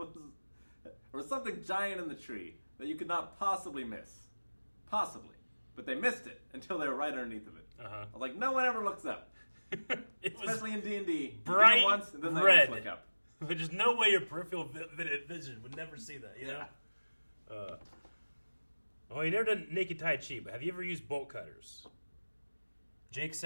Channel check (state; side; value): inverted; both; correlation -1.00